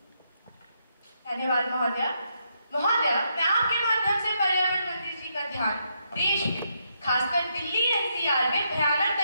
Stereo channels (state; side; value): inverted; both; correlation -0.79